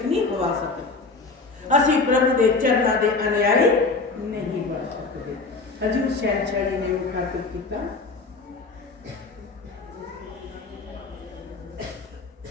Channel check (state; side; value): quieter; right; 3.9 dB